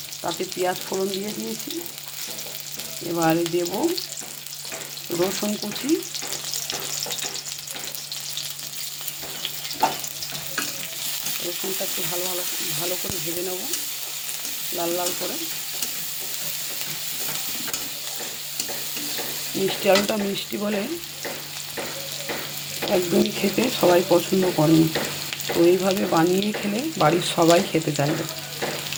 তাতে পেঁয়াজ ফোড়ন দিয়ে দিয়েছি। এবারে দেব রসুন কুচি, রসুনটা একটু ভালো করে ভেজে নেব, লাল লাল করে। মিষ্টি আলুটা মিষ্টি বলে একদমই খেতে সবাই পছন্দ করে না, তো এইভাবে বানিয়ে খেলে বাড়ির সবাই খেতে চাইবে।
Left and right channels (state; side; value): identical; both; correlation 1.00